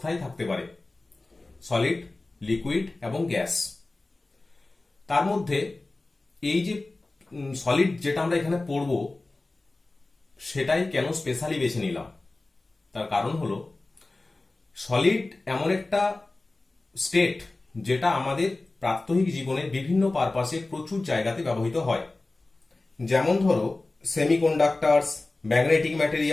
থাকতে পারে: সলিড, লিকুইড এবং গ্যাস। তার মধ্যে এই যে সলিড যেটা আমরা এখানে পড়বো সেটাই কেন স্পেশালি বেছে নিলাম, তার কারণ হলো সলিড এমন একটা স্টেট যেটা আমাদের প্রাত্যহিক জীবনের বিভিন্ন পারপাসে প্রচুর জায়গাতে ব্যবহৃত হয়। যেমন ধরো সেমিকন্ডাক্টরস, ম্যাগনেটিক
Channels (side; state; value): right; quieter; 3.1 dB